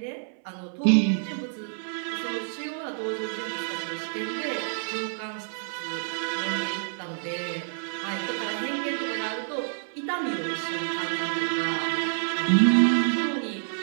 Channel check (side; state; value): left; silent; 59 dB below the other